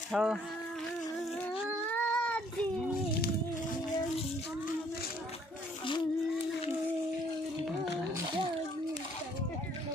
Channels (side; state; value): both; normal; correlation 0.62